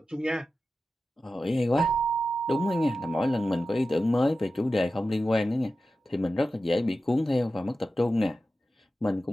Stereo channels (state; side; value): normal; both; correlation 0.93